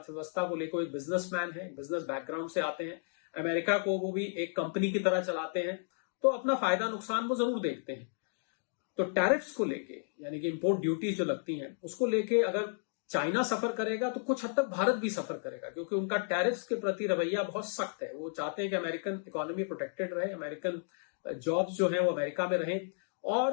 को लेकर एक बिजनेसमैन है, बिजनेस बैकग्राउंड से आते हैं, अमेरिका को वो भी एक कंपनी की तरह चलाते हैं, तो अपना फायदा नुकसान वो जरूर देखते हैं। तो टैरिफ्स को लेके, यानी कि इंपोर्ट ड्यूटीज जो लगती हैं उसको लेके अगर चाइना सफर करेगा तो कुछ हद तक भारत भी सफर करेगा, क्योंकि उनका टैरिफ्स के प्रति रवैया बहुत सख्त है। वो चाहते हैं कि अमेरिकन इकोनॉमी प्रोटेक्टेड रहे, अमेरिकन जॉब्स जो है वो अमेरिका में रहें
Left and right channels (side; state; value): right; silent; digital silence